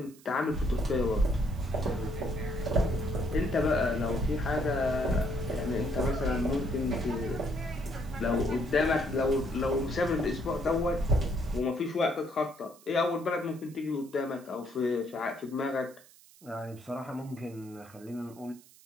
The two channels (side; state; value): right; noise; hiss, 24 dB below the sound